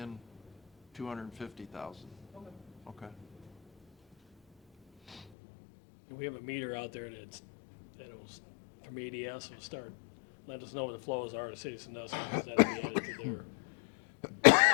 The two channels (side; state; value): right; drops out; at 5.2 s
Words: 250,000. Okay. Okay. And we have a meter out there that'll, from ADS, will start, let us know what the flows are to Citizen Dust, because that'll be added to their bill